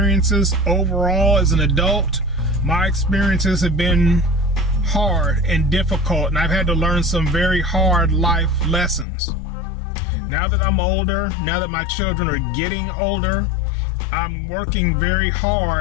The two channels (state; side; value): drops out; right; at 9.1 s